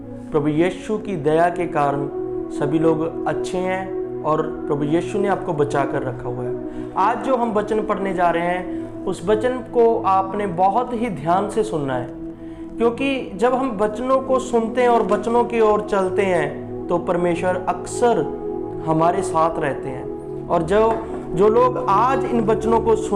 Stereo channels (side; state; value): both; identical; correlation 1.00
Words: प्रभु यीशु की दया के कारण सभी लोग अच्छे हैं और प्रभु यीशु ने आपको बचा कर रखा हुआ है। आज जो हम वचन पढ़ने जा रहे हैं उस वचन को आपने बहुत ही ध्यान से सुनना है, क्योंकि जब हम वचनों को सुनते हैं और वचनों की ओर चलते हैं तो परमेश्वर अक्सर हमारे साथ रहते हैं। और जो लोग आज इन वचनों को